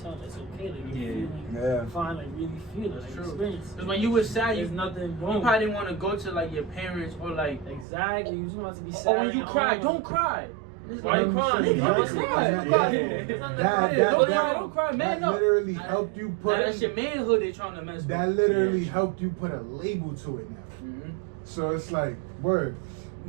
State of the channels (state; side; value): drops out; left; at 7.9 s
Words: them it's okay. Like, you're feeling fine, like really feel it, That's like true. experience it. Because when you was sad, There's you nothing wrong. probably didn't want to go to like your parents or like. Exactly, you just want to be sad. Or when you and cry, all. don't cry. It's Why you like, crying? nigga, Why don't you cry. crying? Don't cry. Don't cry, man. That No. literally helped you put Now, that's your manhood they trying to mess with. that literally helped you put a label to it now. Mm-hmm. So it's like, word.